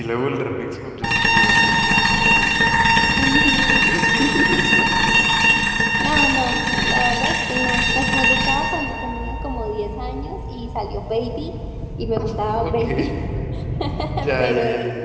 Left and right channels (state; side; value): identical; both; correlation 1.00